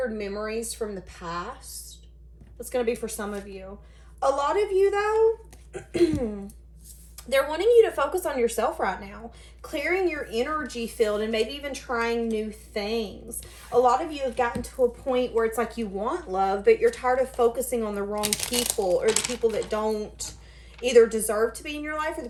memories from the past. That's going to be for some of you. A lot of you, though, they're wanting you to focus on yourself right now, clearing your energy field and maybe even trying new things. A lot of you have gotten to a point where it's like you want love, but you're tired of focusing on the wrong people, or the people that don't either deserve to be in your life, or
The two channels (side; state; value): both; identical; correlation 1.00